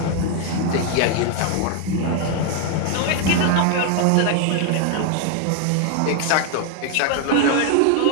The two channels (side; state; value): both; different; correlation 0.00